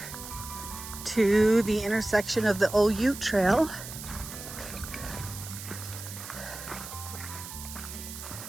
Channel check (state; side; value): noise; right; hiss, 11 dB below the sound